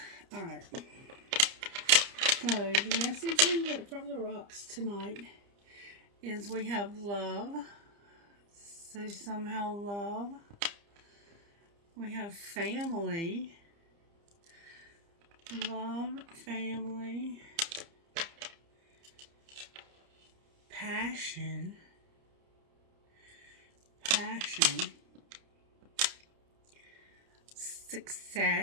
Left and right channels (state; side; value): late; left; 30 ms